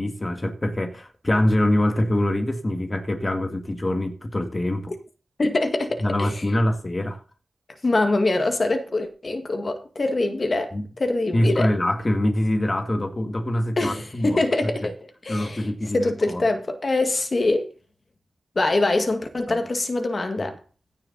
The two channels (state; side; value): normal; both; correlation 0.97